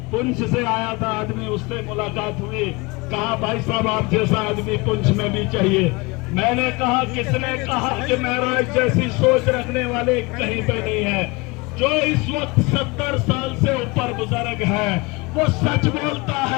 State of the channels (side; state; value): right; quieter; 25.5 dB